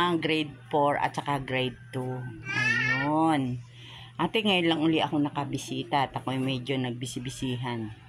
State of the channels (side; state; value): both; identical; correlation 1.00